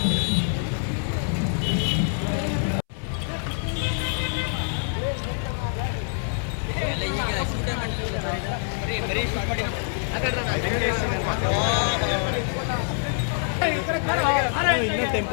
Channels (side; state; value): right; silent; 62 dB below the other